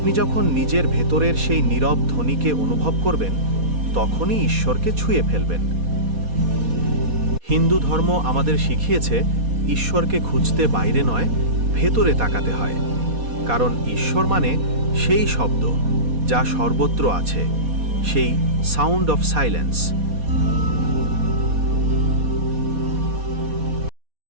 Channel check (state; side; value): late; left; 4.2 ms